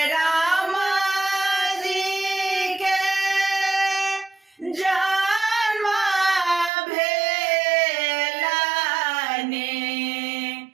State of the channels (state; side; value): drops out; left; at 6.7 s